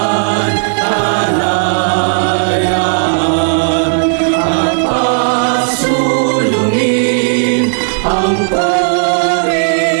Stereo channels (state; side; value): silent; left; digital silence